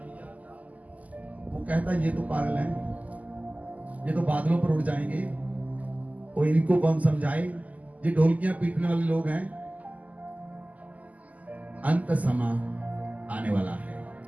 वो कहता है ये तो पागल है, ये तो बादलों पर उड़ जाएंगे, और इनको कौन समझाए, ये ढोलकियां पीटने वाले लोग हैं। अंत समा आने वाला है।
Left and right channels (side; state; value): left; late; 0.076 ms